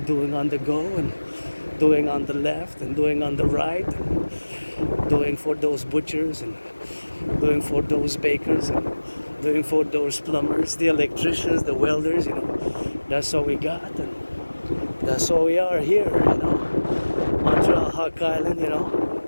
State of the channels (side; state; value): both; inverted; correlation -1.00